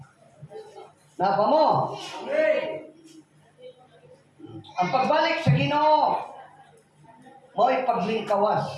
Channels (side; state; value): both; identical; correlation 1.00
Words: Napa mo? Ang pagbalik sa Ginoo, mo'y paglingkawas